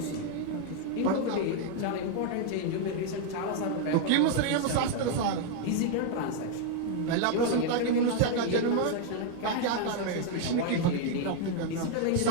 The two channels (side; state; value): both; different; correlation 0.01